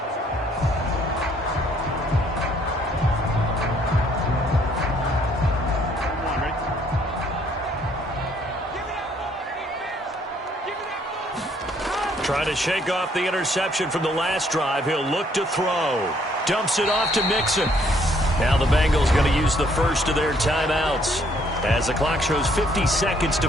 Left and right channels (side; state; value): both; normal; correlation 0.65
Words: Trying to shake off the interception from the last drive. He'll look to throw. Dumps it off to Mixon. Now the Bengals going to use the first of their timeouts as the clock shows 50 seconds